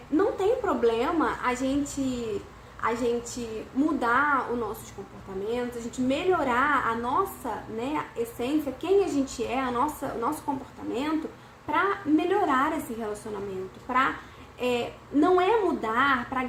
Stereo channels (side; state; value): both; identical; correlation 1.00